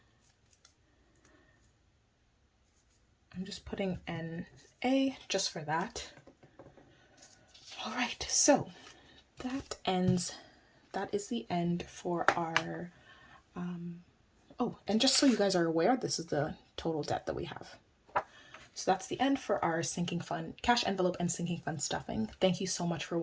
I'm just putting NA just for that. All right, so that is the end for our, oh, and just so you guys are aware, this is the total debt that we have. So that's the end for our sinking fund, cash envelope and sinking fund stuffing. Thank you so much for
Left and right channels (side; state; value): both; identical; correlation 1.00